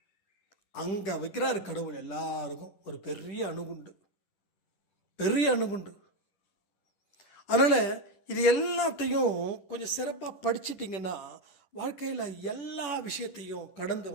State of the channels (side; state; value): right; late; 11 ms